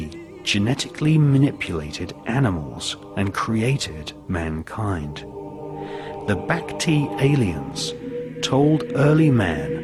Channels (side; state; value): both; identical; correlation 1.00